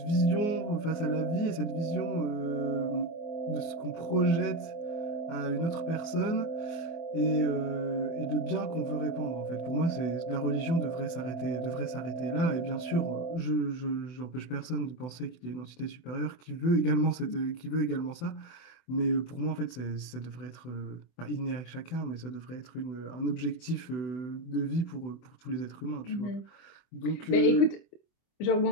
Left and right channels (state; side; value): late; right; 24 ms